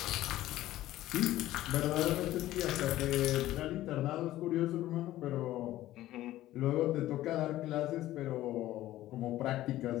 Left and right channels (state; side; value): quieter; right; 14.9 dB